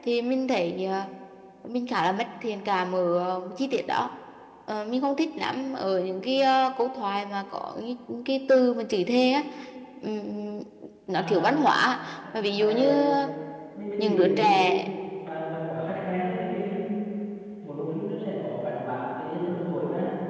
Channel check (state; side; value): identical; both; correlation 1.00